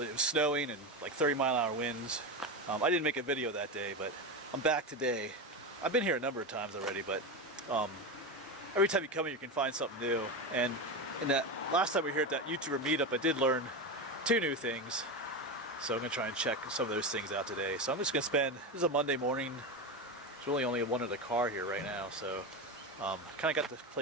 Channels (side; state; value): both; normal; correlation 0.17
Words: it was snowing, and like 30-mile-an-hour winds. I didn't make a video that day, but I'm back today. I've been here a number of times already, but every time you come here, you can find something new. And in that last time we were here at that YouTuber meetup, I did learn 2 new things. So I'm going to try and check some of those things out today. So I'm just going to spend, this is a Monday morning. There's really only one other car here right now. So kind of got the